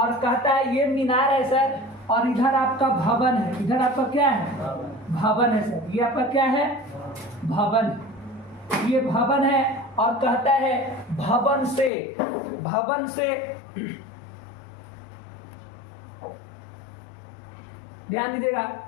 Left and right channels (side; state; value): right; drops out; at 11.9 s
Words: कहता है ये मीनार है सर, और इधर आपका भवन है, इधर आपका क्या है, भवन है सर। ये आपका क्या है, भवन, ये भवन है। और कहता है भवन से ध्यान दीजिएगा,